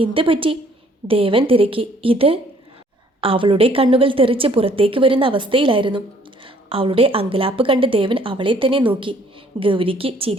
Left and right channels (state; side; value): normal; both; correlation 0.61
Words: എന്ത് പറ്റി? ദേവൻ തിരക്കി. ഇത്? അവളുടെ കണ്ണുകൾ തെറിച്ച് പുറത്തേക്ക് വരുന്ന അവസ്ഥയിലായിരുന്നു. അവളുടെ അങ്കലാപ്പ് കണ്ട് ദേവൻ അവളെ തന്നെ നോക്കി. ഗൗരിക്ക്